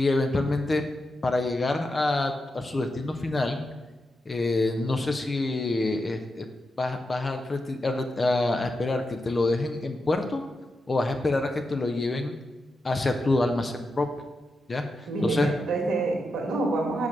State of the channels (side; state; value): both; normal; correlation 0.87